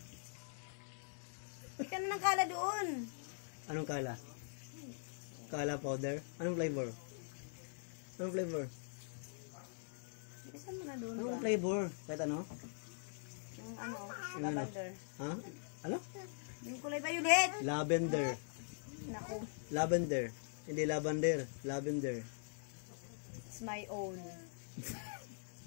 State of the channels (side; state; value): right; silent; digital silence